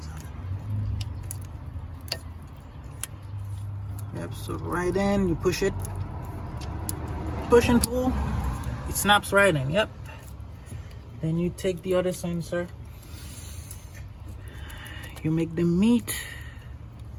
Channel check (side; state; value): both; identical; correlation 1.00